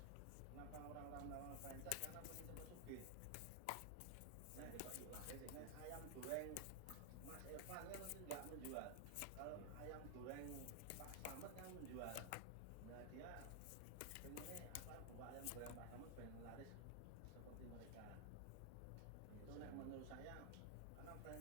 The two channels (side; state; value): both; different; correlation 0.00